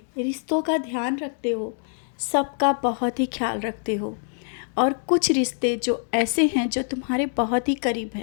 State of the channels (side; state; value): right; silent; 56 dB below the other